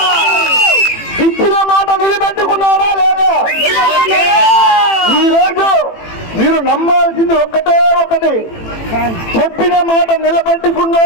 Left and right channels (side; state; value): right; late; 18 ms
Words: ఇచ్చిన మాట నిలబెట్టుకున్నాడా లేదా? ఈరోజు మీరు నమ్మాల్సింది ఒకటి, చెప్పిన మాట